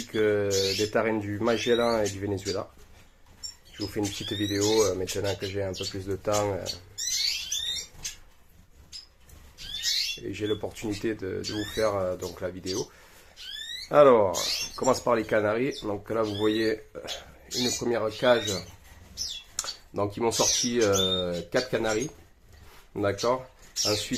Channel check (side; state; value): both; identical; correlation 1.00